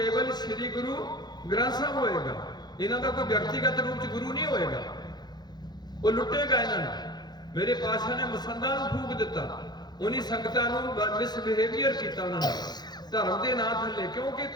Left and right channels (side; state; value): right; late; 0.20 ms